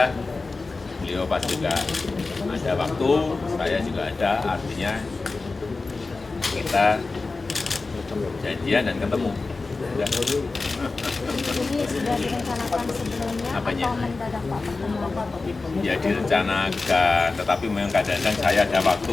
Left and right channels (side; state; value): right; quieter; 3.8 dB